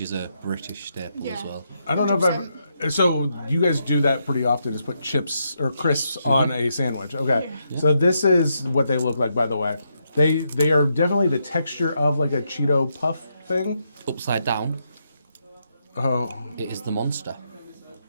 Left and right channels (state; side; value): inverted; both; correlation -0.80